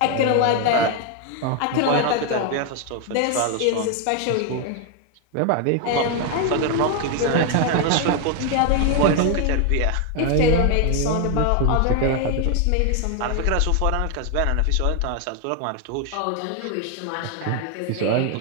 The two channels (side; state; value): both; different; correlation 0.01